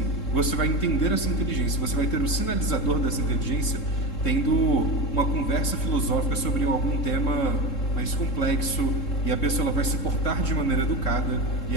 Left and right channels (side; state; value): right; late; 3.7 ms